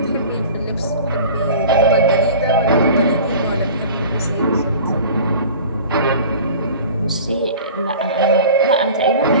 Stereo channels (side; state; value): both; inverted; correlation -0.40